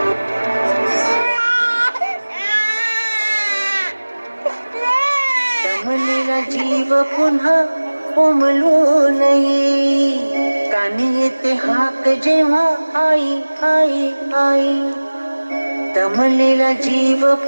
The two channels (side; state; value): both; inverted; correlation -1.00